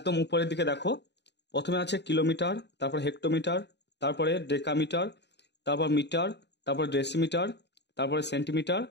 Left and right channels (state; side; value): late; right; 0.50 ms